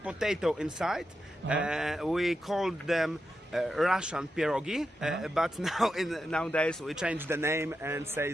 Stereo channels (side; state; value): both; normal; correlation 0.88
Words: potato inside. We called them Russian pierogi, but nowadays we change the name and say